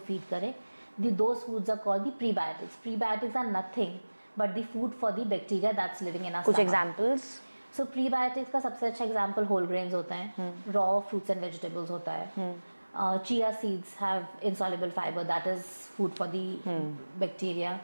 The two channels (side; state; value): both; inverted; correlation -1.00